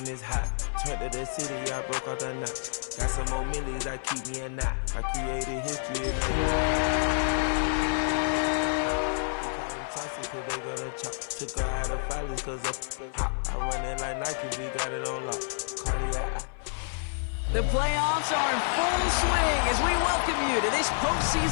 it's hot. Turned to the city, I broke out the knot. Got some more millies, I keep me a knot. I created history, it made me. You call them trusty, cause they gonna chop. Took her out of filers, cause up hop. I run it like Nike, we got it on lock. Cardiac. The playoffs are in full swing as we welcome you to this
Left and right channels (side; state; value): right; silent; 58 dB below the other